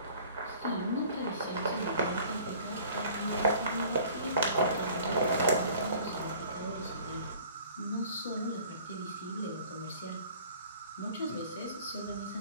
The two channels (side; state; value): both; inverted; correlation -0.50